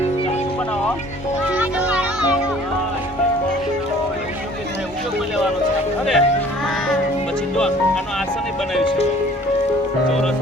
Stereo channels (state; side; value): normal; both; correlation 0.52